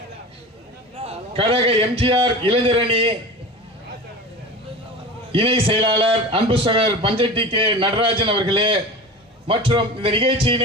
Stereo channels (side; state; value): both; normal; correlation 0.32